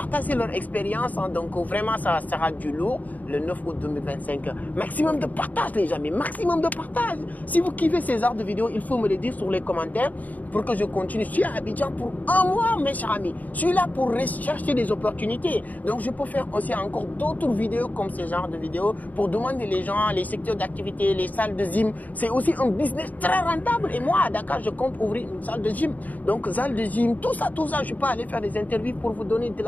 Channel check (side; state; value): right; late; 0.078 ms